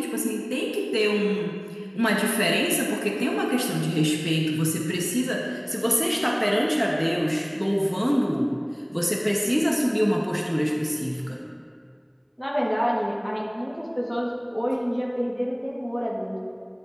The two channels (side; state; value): both; identical; correlation 1.00